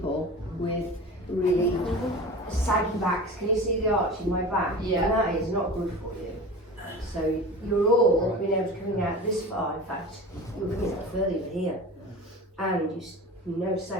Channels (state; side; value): normal; both; correlation 0.35